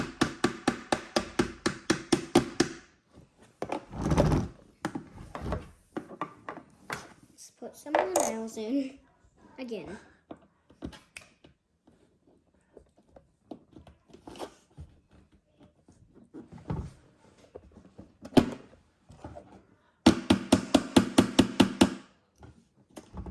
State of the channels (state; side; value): identical; both; correlation 1.00